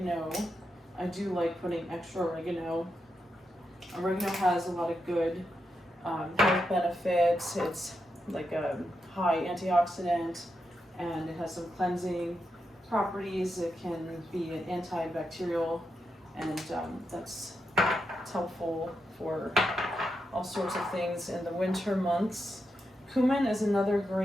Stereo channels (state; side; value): normal; both; correlation 0.85